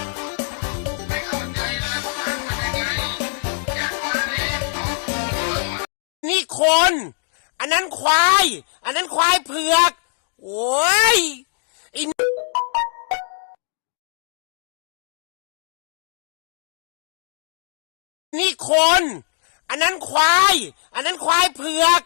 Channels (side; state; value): right; silent; 64 dB below the other